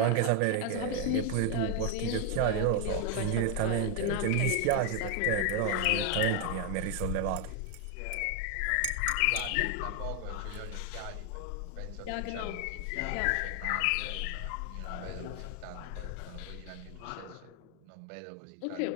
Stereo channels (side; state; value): both; different; correlation 0.01